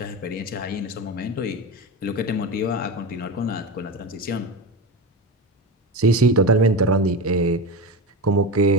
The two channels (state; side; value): normal; both; correlation 0.21